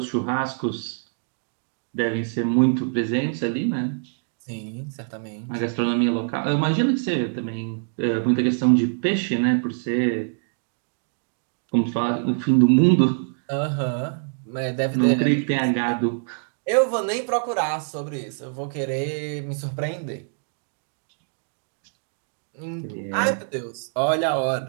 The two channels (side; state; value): left; silent; digital silence